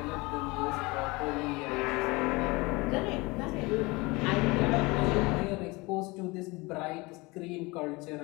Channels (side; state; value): right; quieter; 24.4 dB